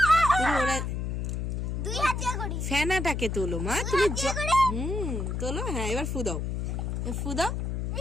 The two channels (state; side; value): noise; left; hum, 2 dB below the sound